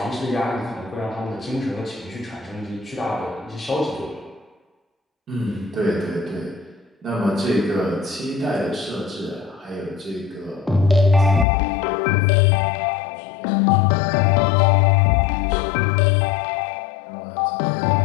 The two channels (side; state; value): right; drops out; at 11.5 s